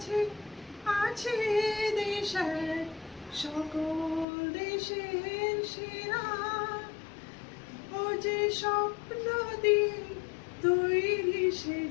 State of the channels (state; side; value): drops out; right; at 4.2 s